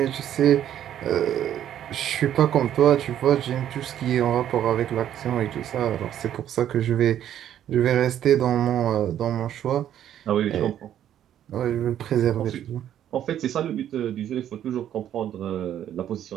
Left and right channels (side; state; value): left; quieter; 10.8 dB